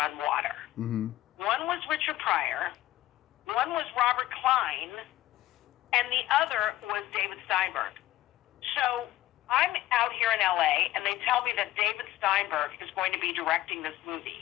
water. One was Richard Pryor. One was Robert Klein, and the other was David Steinberg. So I'm out here in LA, and they tell me that David Steinberg is going to be directing this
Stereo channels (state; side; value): quieter; right; 15.4 dB